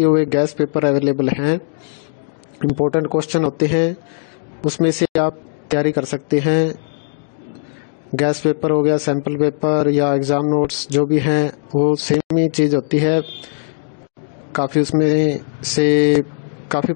हुए गैस पेपर अवेलेबल हैं। इम्पोर्टेंट क्वेश्चन होते हैं, उसमें से आप तैयारी कर सकते हैं। गैस पेपर हो गया, सैम्पल पेपर या एग्ज़ाम नोट्स जो भी हैं वो सेम ही चीज़ होती है। काफ़ी उसमें से काफ़ी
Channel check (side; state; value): right; silent; digital silence